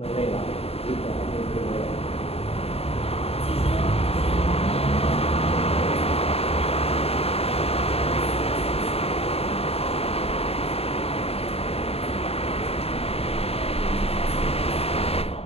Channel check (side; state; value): right; late; 0.29 ms